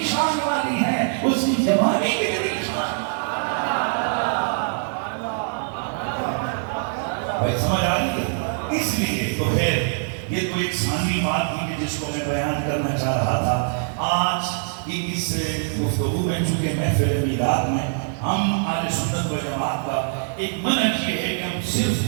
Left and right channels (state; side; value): silent; left; 63 dB below the other